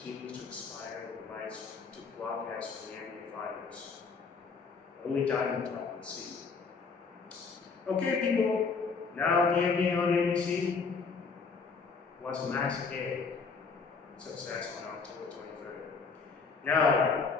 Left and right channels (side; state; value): right; quieter; 4.9 dB